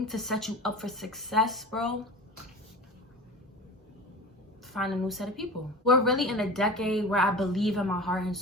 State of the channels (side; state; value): both; normal; correlation 0.33